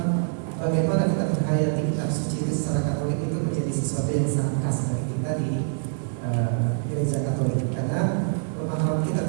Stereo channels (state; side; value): silent; left; digital silence